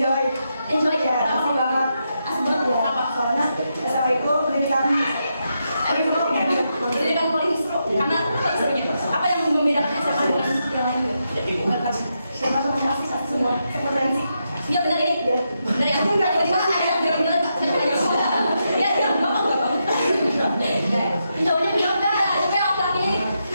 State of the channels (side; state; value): both; inverted; correlation -0.84